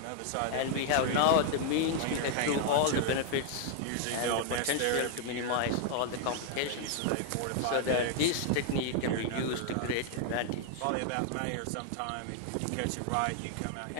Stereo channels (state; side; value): different; both; correlation 0.00